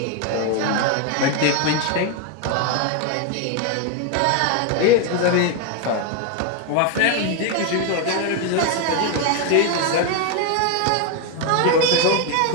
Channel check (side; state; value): both; different; correlation 0.01